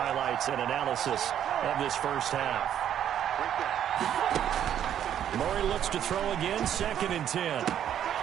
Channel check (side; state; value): left; quieter; 10.1 dB